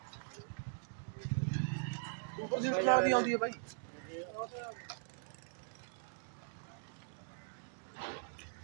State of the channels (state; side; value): silent; left; digital silence